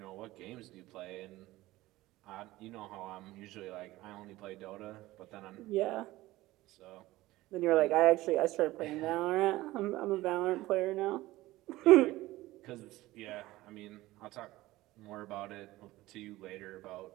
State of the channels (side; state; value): left; quieter; 17.8 dB